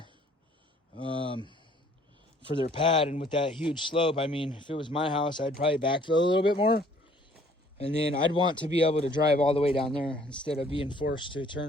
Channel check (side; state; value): both; normal; correlation 0.58